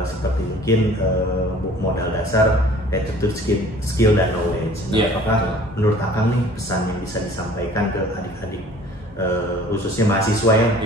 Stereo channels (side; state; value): both; normal; correlation 0.50